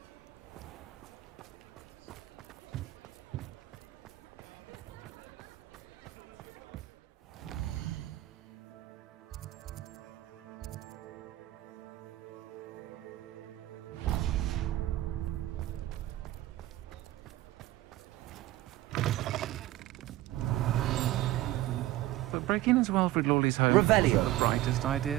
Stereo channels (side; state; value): left; quieter; 15.8 dB